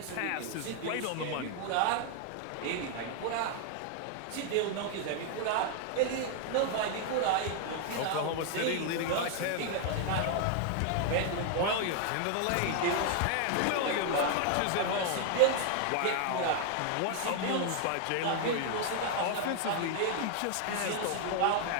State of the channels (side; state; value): both; different; correlation 0.00